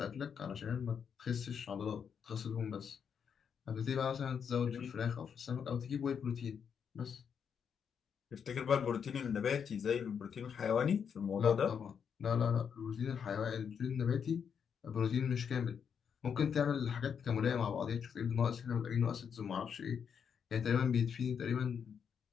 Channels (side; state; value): right; quieter; 7.2 dB